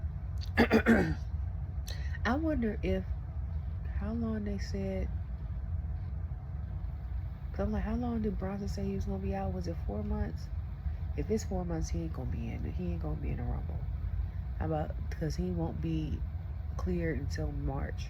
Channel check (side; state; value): both; identical; correlation 1.00